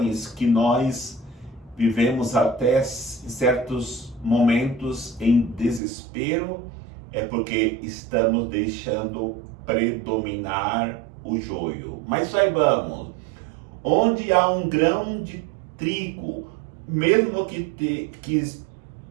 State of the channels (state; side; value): drops out; left; at 5.8 s